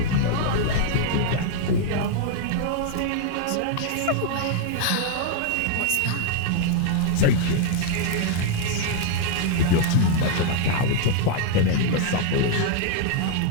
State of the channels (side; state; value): both; different; correlation 0.00